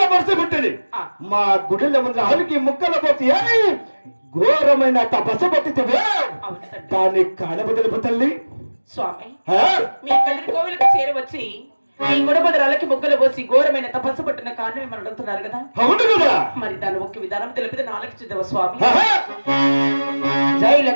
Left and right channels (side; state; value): both; inverted; correlation -1.00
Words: మనసు పుట్టింది. మా గుడిలో ముందు ఆలుకి ముక్కల పోతే ఘోరమైన తపస్సు పట్టితే దాన్ని కానబదులు తల్లి. స్వామి మీ కదిరి కోవిలకు చేరవచ్చి మీ గుడబదరాలకి ముగ్గలు పోసి ఘోరమైన తపస్సు పట్టిన కారణం ఏమని అడుగుతున్నారు కదా. అవును కదా. మరి దాని ముఖ్య విధానం తెలిపితే నాలుగు చిద్దవ స్వామి. జై